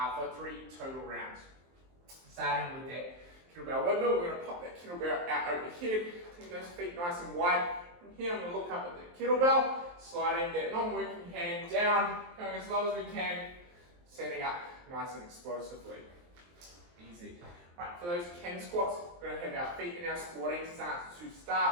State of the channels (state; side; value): late; left; 23 ms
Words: for 3 total rounds. Starting with that kettlebell windmill, we're going to pop that kettlebell out overhead, take those feet nice and wide. From here, I'm going to look up at the kettlebell, sliding that non-working hand down, going as low as we can, setting up nice and explosively. Easy. Right, for those kang squats, we're going to have our feet in our squatting stance to